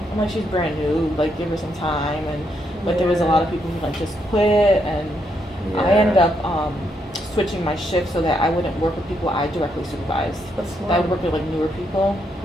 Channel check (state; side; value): normal; both; correlation 0.77